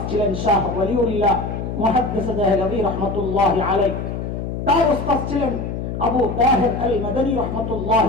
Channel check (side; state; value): left; noise; hum, 5 dB below the sound